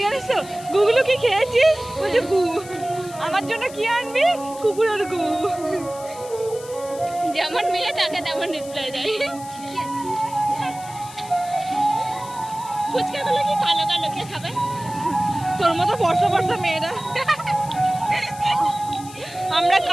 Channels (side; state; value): left; noise; hiss, 17 dB below the sound